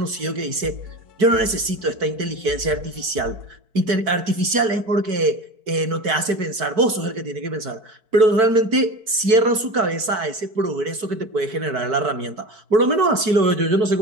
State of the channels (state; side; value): late; left; 4.6 ms